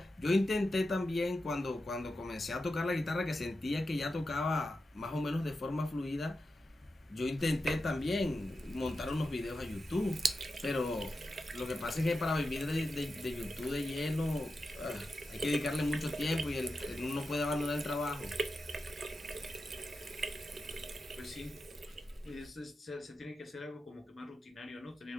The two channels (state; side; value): normal; both; correlation 0.90